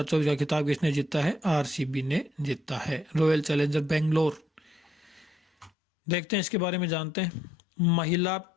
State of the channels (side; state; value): right; drops out; at 5.7 s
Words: का खिताब किसने जीता है? आरसीबी ने जीता है, रॉयल चैलेंजर बेंगलोर। देखते हैं इसके बारे में, जानते हैं। महिला